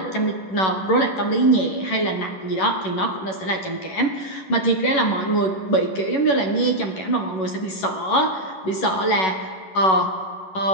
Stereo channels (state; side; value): late; right; 11 ms